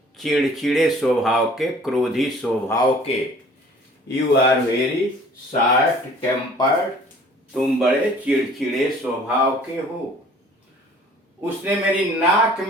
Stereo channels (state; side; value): normal; both; correlation 0.51